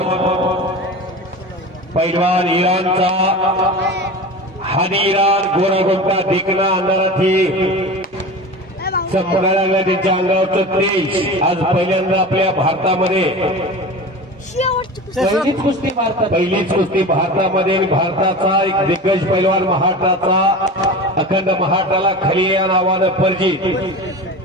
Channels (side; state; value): both; normal; correlation 0.31